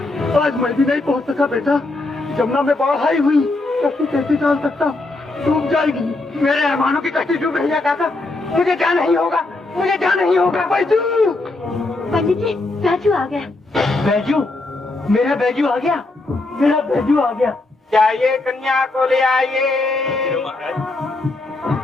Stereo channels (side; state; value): right; quieter; 3.1 dB